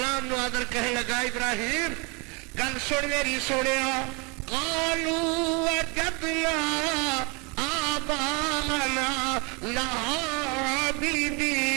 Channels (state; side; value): quieter; left; 30.5 dB